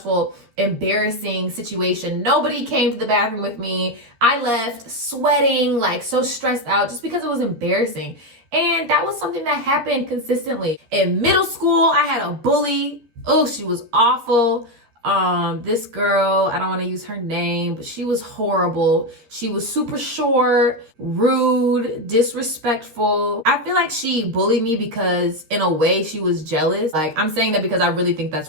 embarrassing situation. Nobody came to the bathroom with me. I left sweating, like so stressed out just because it was embarrassing. And that was something that happened consistently. In middle school, I had a bully. Oh, she was awful. This girl, I don't want to use her name, but she was horrible. She was super short, rude, disrespectful. I feel like she bullied me because in a way she was jealous. Like I'm saying that because I really think that's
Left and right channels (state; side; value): late; left; 13 ms